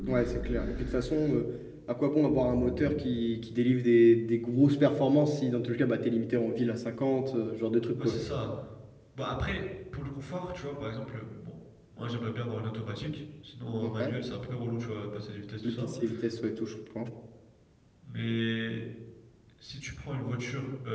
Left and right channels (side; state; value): both; identical; correlation 1.00